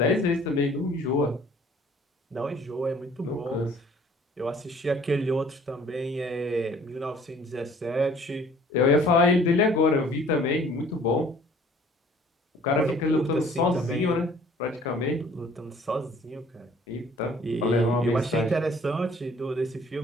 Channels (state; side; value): normal; both; correlation 0.54